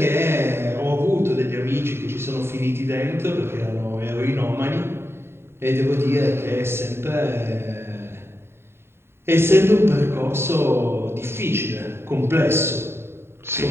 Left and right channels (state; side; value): late; left; 0.12 ms